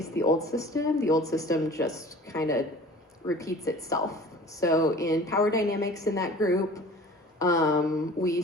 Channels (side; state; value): both; normal; correlation 0.44